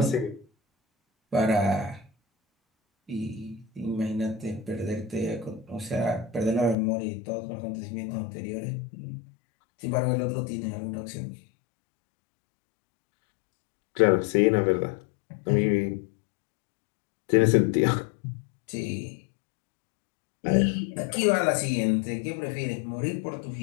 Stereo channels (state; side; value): drops out; right; at 6.8 s